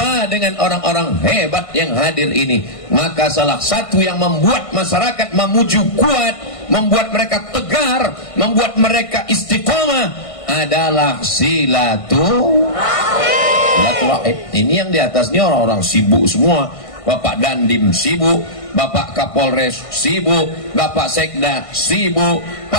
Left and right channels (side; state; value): right; late; 1.5 ms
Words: dengan orang-orang hebat yang hadir ini. Maka salah satu yang membuat masyarakat Mamuju kuat, membuat mereka tegar, membuat mereka istiqomah adalah silaturahim. Ini yang di atasnya orang-orang sibuk semua. Bapak Dandim sibuk, Bapak Kapolres sibuk, Bapak Sekda sibuk.